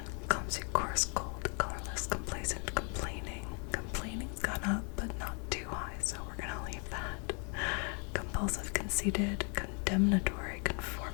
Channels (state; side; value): quieter; right; 36.0 dB